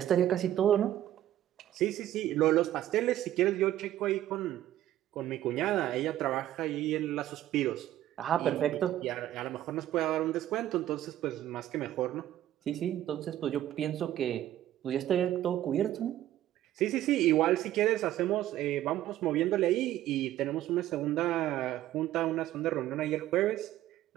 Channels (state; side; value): quieter; left; 13.0 dB